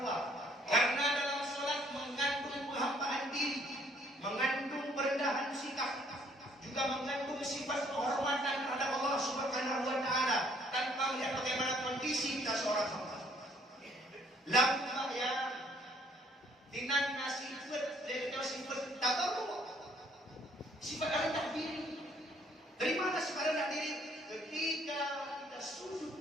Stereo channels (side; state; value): both; normal; correlation 0.63